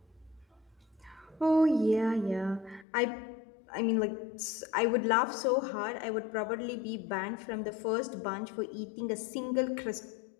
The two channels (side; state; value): right; drops out; at 2.9 s